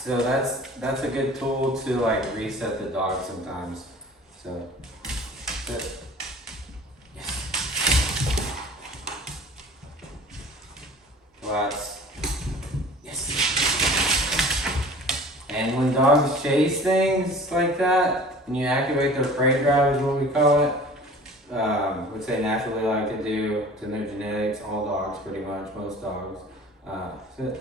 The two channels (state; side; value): normal; both; correlation 0.44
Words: that's a good tool to like reset the dog sometimes. So yes. Lots. Yes. And when dogs chase things like that, and you activate their prey drive is what we call it, which they naturally like to do. It's in their genetics, all dogs pretty much, most dogs. So,